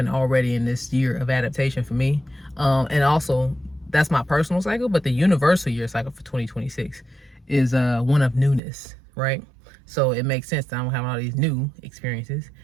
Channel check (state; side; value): drops out; left; at 8.6 s